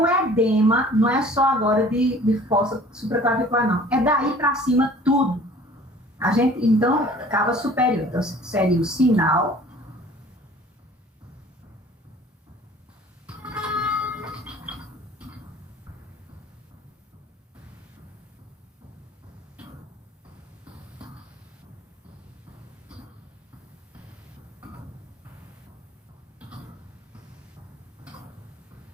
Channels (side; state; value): both; normal; correlation 0.49